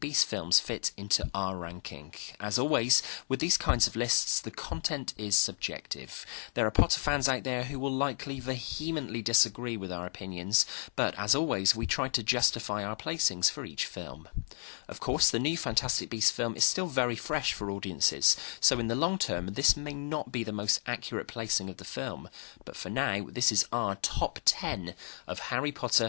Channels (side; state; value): right; silent; 56 dB below the other